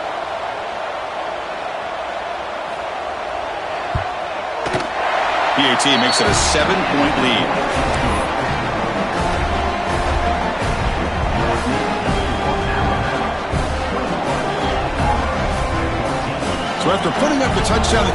PAT makes it a 7-point lead. So after putting up the touchdown, the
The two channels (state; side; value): identical; both; correlation 1.00